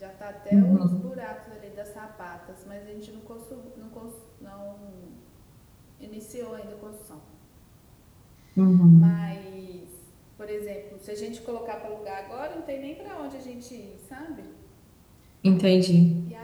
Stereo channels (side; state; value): both; identical; correlation 1.00